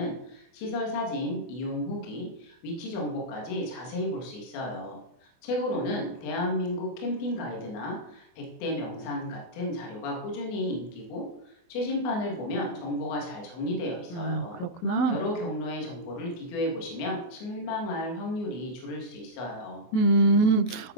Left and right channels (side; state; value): right; late; 24 ms